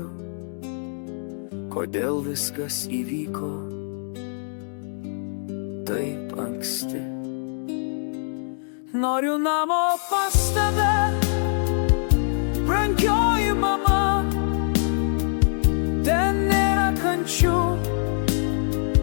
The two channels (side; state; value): right; silent; 63 dB below the other